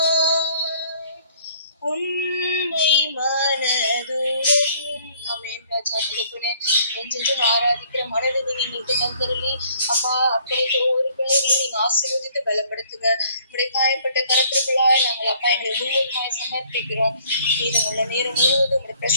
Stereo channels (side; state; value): both; inverted; correlation -0.59